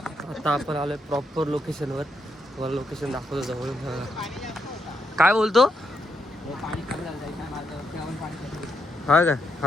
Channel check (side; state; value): both; normal; correlation 0.79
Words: आता आपण आलोय प्रॉपर लोकेशनवर. तुम्हाला लोकेशन दाखवतो जवळून. काय बोलतो, हा का